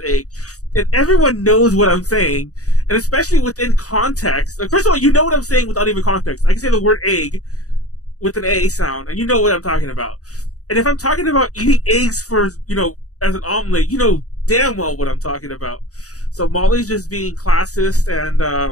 egg, and everyone knows what I'm saying, and especially within context. Like, first of all, you know what I'm saying without even context. I can say the word egg with an A sound, and you know what I'm talking about. And if I'm talking about eating eggs for, as an omelet, you know damn well what I'm talking about. So Molly's just being classist, and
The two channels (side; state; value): right; late; 0.66 ms